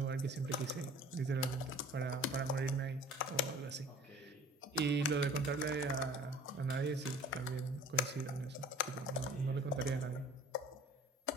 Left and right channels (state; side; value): normal; both; correlation 0.47